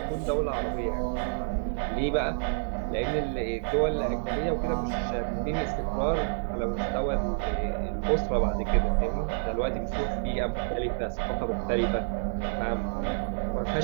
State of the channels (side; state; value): left; silent; digital silence